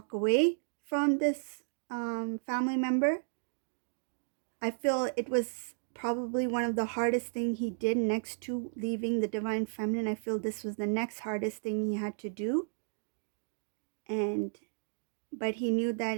away from this family member. I feel it was probably one of the hardest thing he did next to leaving the divine feminine. I feel this was the next hardest thing he had to do, and but he knew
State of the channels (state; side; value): silent; left; digital silence